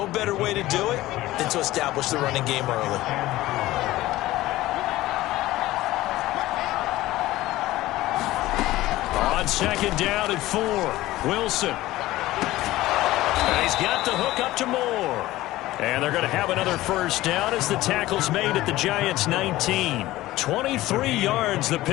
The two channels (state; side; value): quieter; right; 16.8 dB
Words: better way to do it than to establish the running game early. On 2nd down and 4, Wilson. And he's got the hook up to Moore. And they're going to have another first down as the tackle's made at the Giants' 19. 23 yards the